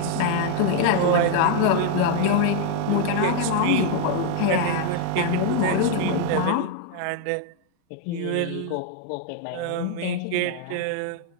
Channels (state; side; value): different; both; correlation 0.00